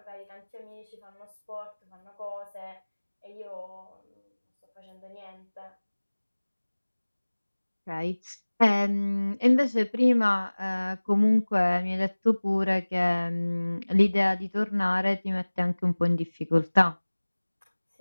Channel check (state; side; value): inverted; both; correlation -1.00